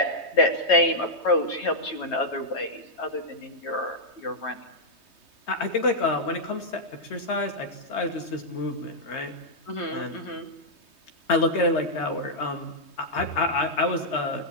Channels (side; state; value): right; late; 3.2 ms